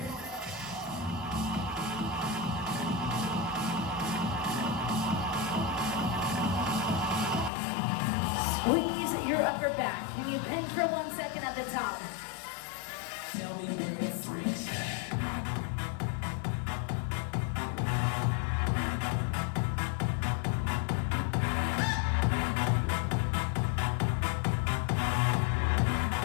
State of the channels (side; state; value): right; drops out; at 7.5 s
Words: Squeeze your upper back. Can you pinch for 1 second at the top? Tell me where the freaks